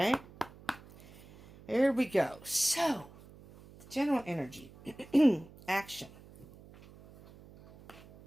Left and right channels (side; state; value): right; noise; hum, 21 dB below the sound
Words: Here we go. So, the general energy. Action.